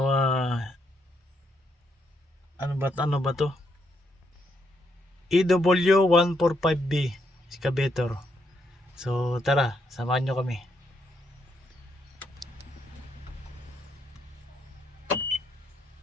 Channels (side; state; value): both; normal; correlation 0.77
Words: ba to? EW145B excavator. So tara, samahan nyo kami.